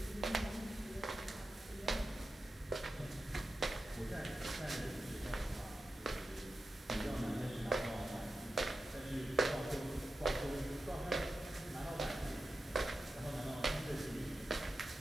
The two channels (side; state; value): both; normal; correlation 0.91